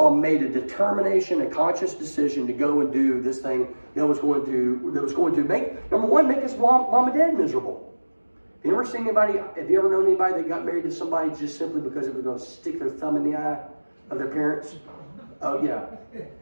made a determination, a conscious decision to go and do this thing that was going to make, number one, make his mom and dad miserable. Have you ever known anybody that got married to somebody just simply because it was going to stick their thumb in the eye of their parents? Oh yeah.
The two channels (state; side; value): inverted; both; correlation -1.00